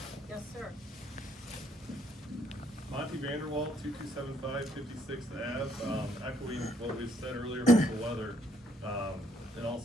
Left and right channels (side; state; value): both; normal; correlation 0.69